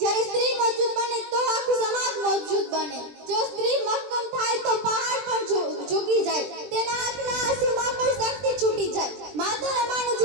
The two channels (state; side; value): late; left; 20 ms